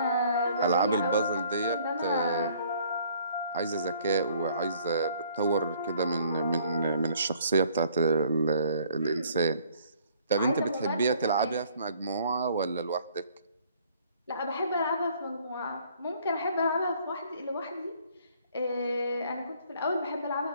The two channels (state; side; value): inverted; both; correlation -0.60